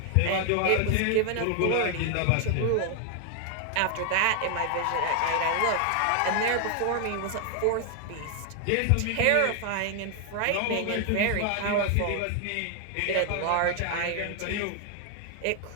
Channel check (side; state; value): both; different; correlation 0.00